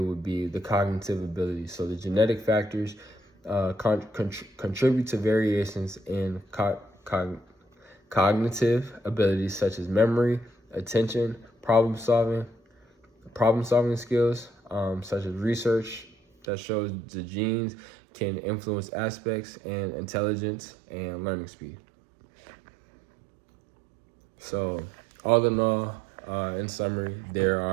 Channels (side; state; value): left; drops out; at 16.4 s